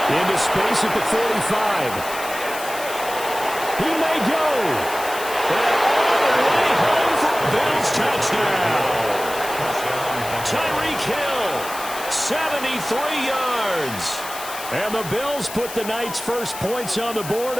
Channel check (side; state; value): left; noise; hiss, 11 dB below the sound